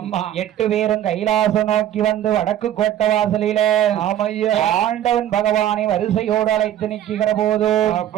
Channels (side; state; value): left; quieter; 11.5 dB